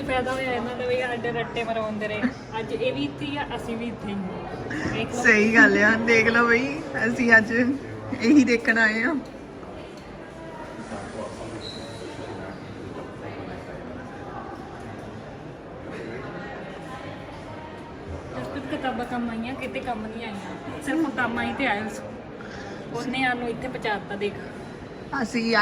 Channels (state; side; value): identical; both; correlation 1.00